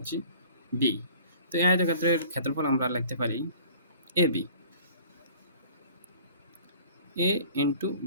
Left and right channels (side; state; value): both; inverted; correlation -0.49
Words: বি। তো এই আয়তক্ষেত্রের ক্ষেত্রফল আমরা লিখতে পারি A B, A into